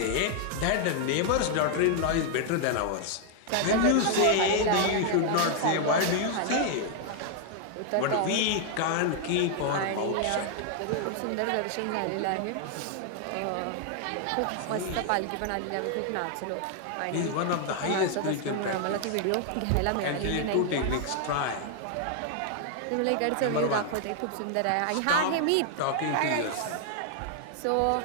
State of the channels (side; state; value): both; different; correlation 0.00